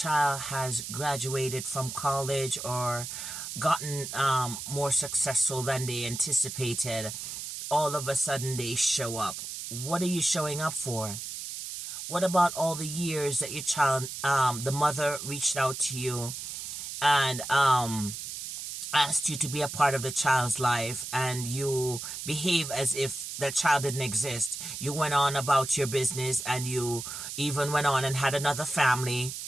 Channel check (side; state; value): right; noise; hiss, 7 dB below the sound